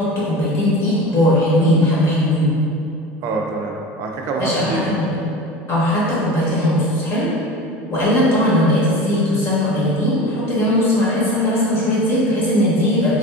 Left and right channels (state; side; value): normal; both; correlation 0.33